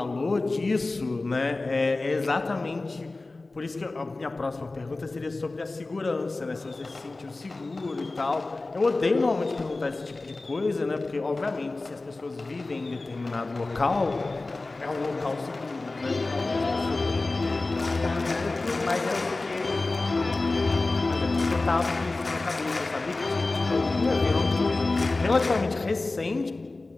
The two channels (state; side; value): quieter; right; 3.3 dB